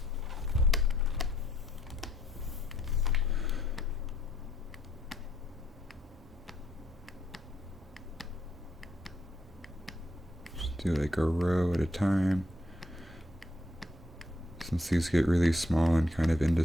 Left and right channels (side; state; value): both; normal; correlation 0.72